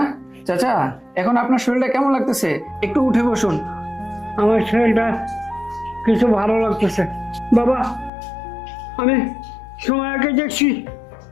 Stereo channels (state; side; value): drops out; right; at 8.1 s